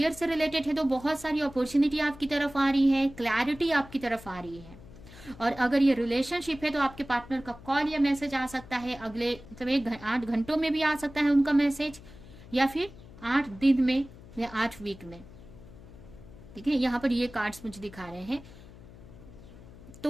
से रिलेटेड है तो बहुत सारी अपॉर्चुनिटी आपकी तरफ आ रही है, क्लैरिटी आपकी तरफ आ रही है। और अगर ये रिलेशनशिप है तो आपके पार्टनर का कॉल या मैसेज आ सकता है, अगले मतलब 8 घंटों में भी आ सकता है उनका मैसेज, या फिर 8 दिन में या 8 वीक में। ठीक है, यहाँ पर ये कार्ड्स मुझे दिखा रहे हैं।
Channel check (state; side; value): noise; left; hum, 19 dB below the sound